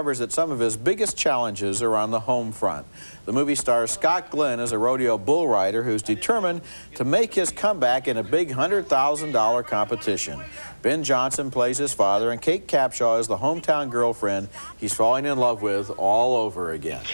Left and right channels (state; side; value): inverted; both; correlation -1.00